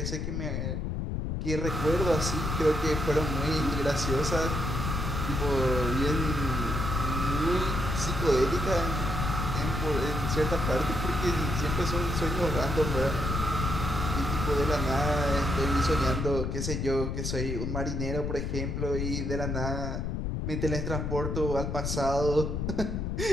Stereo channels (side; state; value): left; noise; rumble, 2 dB below the sound